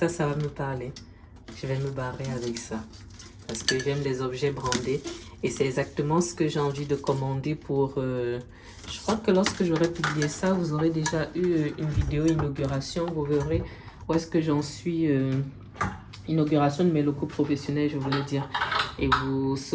va me parler. Je vais me barrer avec ça parce que j'aime les objets brandés et c'est exactement ce que j'ai envie de commander pour... je crois que lorsque j'aurai publié ça, vous aurez déjà eu une vidéo inauguration, vous verrez où est-ce que j'en suis, inauguration de mes locaux professionnels, je voulais dire. Et vous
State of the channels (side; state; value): both; identical; correlation 1.00